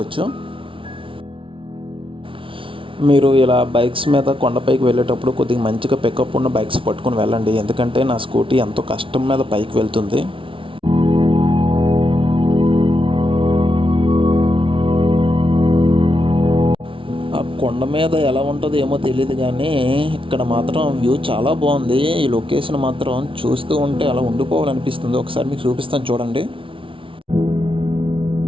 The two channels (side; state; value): left; late; 0.25 ms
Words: మీరు ఇలా బైక్స్ మీద కొండపైకి వెళ్ళేటప్పుడు కొద్దిగా మంచిగా పికప్ ఉన్న బైక్స్ పట్టుకొని వెళ్ళండి. ఎందుకంటే నా స్కూటీ ఎంతో కష్టం మీద పైకి వెళ్తుంది. ఆ కొండ మీద ఎలా ఉంటుందో ఏమో తెలియదు, కానీ ఇక్కడ మాత్రం వ్యూ చాలా బాగుంది. ఈ లొకేషన్ మాత్రం చూస్తూ ఉంటే అలా ఉండిపోవాలనిపిస్తుంది. ఒకసారి మీకు చూపిస్తాను చూడండి.